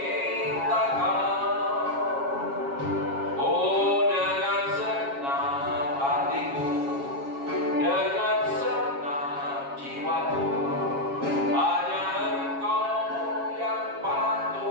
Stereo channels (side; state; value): left; late; 7.3 ms